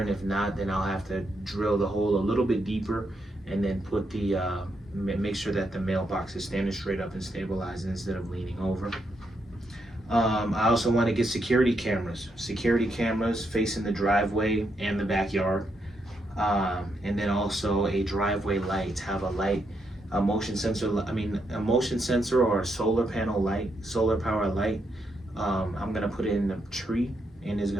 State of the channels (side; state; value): both; normal; correlation 0.80